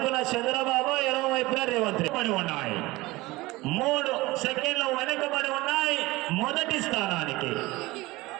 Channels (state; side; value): quieter; left; 20.4 dB